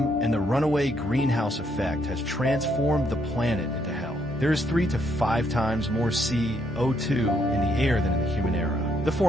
and the runaway greenhouse effect has transformed the planet into hell. There is 3 to 5 times more CO2 in the air than in the human era. The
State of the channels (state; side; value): normal; both; correlation 0.73